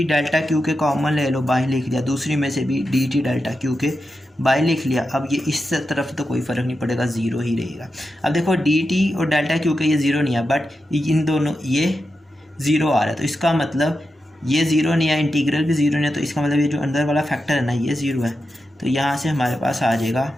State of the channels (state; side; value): normal; both; correlation 0.89